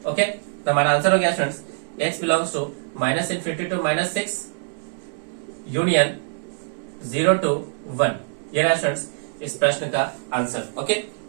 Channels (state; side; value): silent; left; digital silence